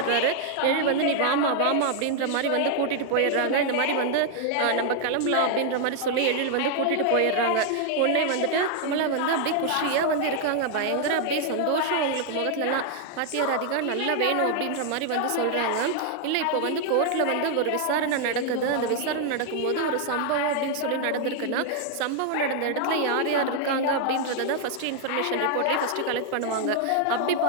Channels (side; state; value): both; different; correlation 0.00